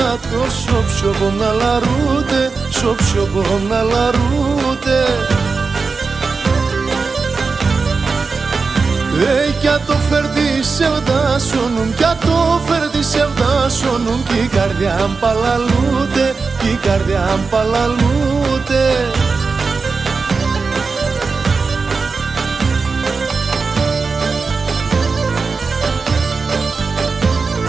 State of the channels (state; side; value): quieter; left; 4.5 dB